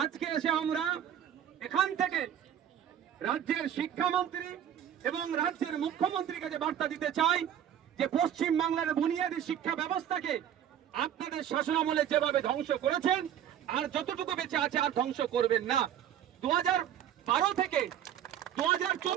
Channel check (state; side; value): quieter; left; 10.1 dB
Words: আজকে এসে আমরা এখান থেকে রাজ্যের শিক্ষামন্ত্রী এবং রাজ্যের মুখ্যমন্ত্রীকে যে বার্তা দিতে চাই যে পশ্চিম বাংলার বুনিয়াদী শিক্ষা ব্যবস্থাকে আপনাদের শাসনামলে যেভাবে ধ্বংস করেছেন আর যতটুকু বেঁচে আছে আর ধ্বংস করবেন না। 2012 থেকে